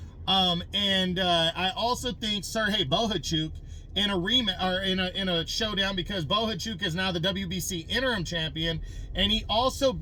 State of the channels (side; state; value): both; identical; correlation 1.00